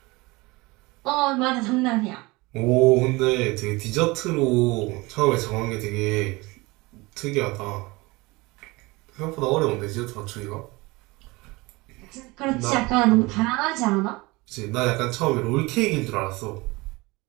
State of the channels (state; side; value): quieter; left; 23.3 dB